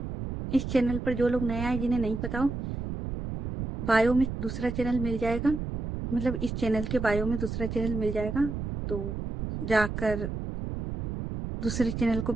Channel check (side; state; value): right; noise; rumble, 5 dB below the sound